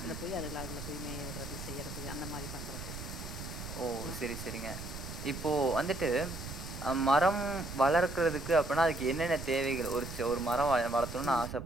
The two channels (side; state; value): right; noise; rumble, 9 dB below the sound